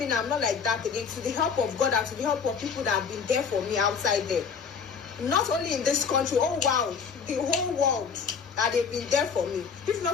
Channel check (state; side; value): quieter; right; 6.1 dB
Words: now, I'm not like that again. To the help of God and to the help of people that have been there for me outside there. Not only in this country, oh wow, the whole world, that they've been there for me. If